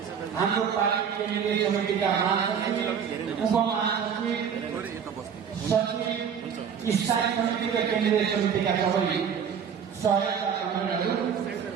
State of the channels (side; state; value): left; quieter; 7.5 dB